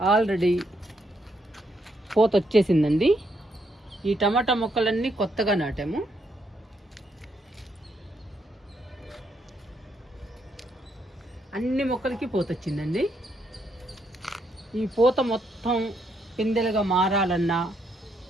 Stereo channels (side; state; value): both; normal; correlation 0.76